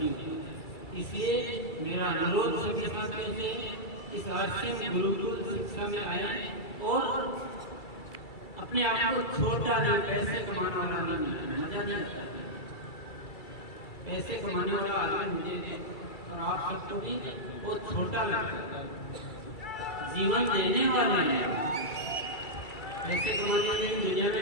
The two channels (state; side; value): late; right; 2.3 ms